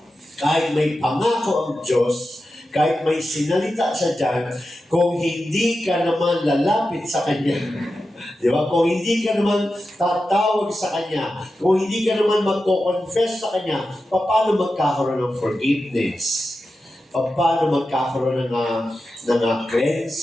kahit may pangako ang Diyos, kahit may sinalita siya dyan, kung hindi ka naman lalapit sa Kanya, di ba? Kung hindi ka naman tatawag sa Kanya, kung hindi ka naman magko-confess sa Kanya, paano magkakaroon ng forgiveness? Paano magkakaroon ng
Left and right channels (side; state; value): both; normal; correlation 0.91